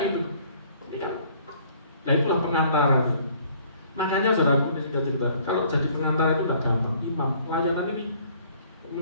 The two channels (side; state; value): both; inverted; correlation -0.58